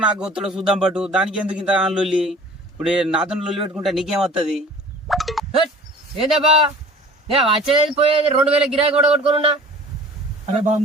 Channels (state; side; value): normal; both; correlation 0.45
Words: నాకు గొత్తడో చూద్దాం పట్టు. దానికి ఎందుకు ఇంత లొల్లి? ఇప్పుడు నాతో లొల్లి పెట్టుకుంటే నీకేమవుతుంది? ఏందబ్బా నేను వచ్చేది పోయేది 2000 గిరాకీ కూడా కొట్టుకున్నా. అరే